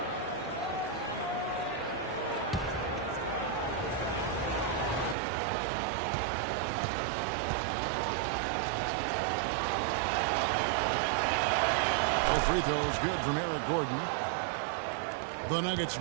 Free throw is good from Eric Gordon. The Nuggets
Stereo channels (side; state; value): left; drops out; at 5.2 s